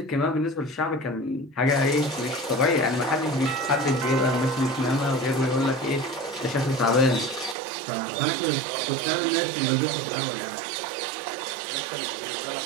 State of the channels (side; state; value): left; drops out; at 7.6 s